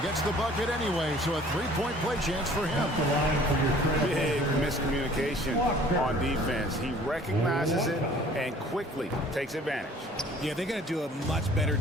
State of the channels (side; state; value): both; normal; correlation 0.52